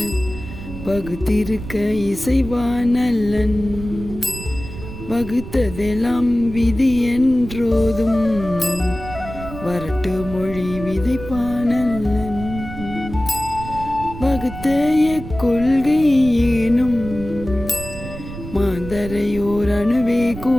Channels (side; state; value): right; noise; rumble, 11 dB below the sound